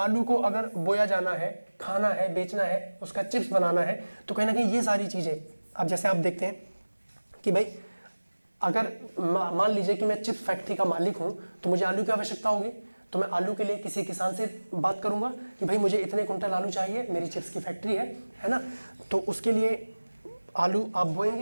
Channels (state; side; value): inverted; both; correlation -1.00